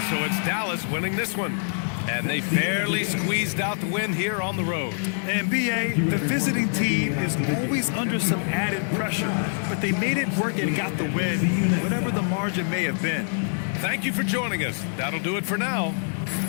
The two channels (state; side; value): silent; right; digital silence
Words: so it's Dallas winning this one. And they barely squeezed out the win here on the road. And B.A., the visiting team is always under some added pressure, but they made it work and got the win, whatever the margin may have been. Thank you for joining us. That'll do it for now.